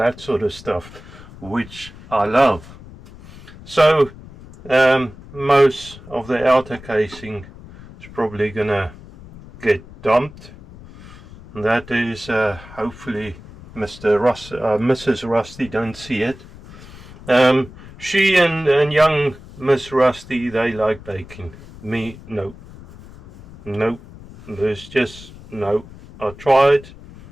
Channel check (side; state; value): left; noise; rumble, 18 dB below the sound